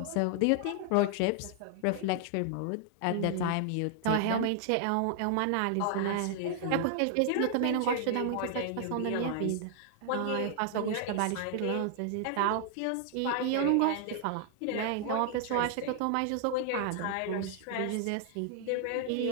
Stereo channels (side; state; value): both; different; correlation 0.00